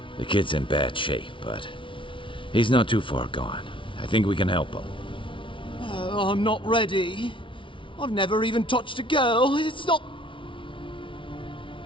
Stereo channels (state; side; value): late; right; 0.25 ms